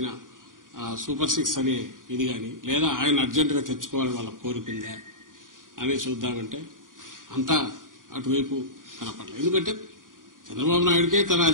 సూపర్ 6 అనే ఇది గాని లేదా ఆయన అర్జెంటుగా తెచ్చుకోవాలని వాళ్ళ కోరుకుందా అని చూద్దామంటే అంతా అటువైపు కనపడలేదు. ఎందుకంటే చంద్రబాబు నాయుడికే తన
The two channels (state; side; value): late; left; 0.89 ms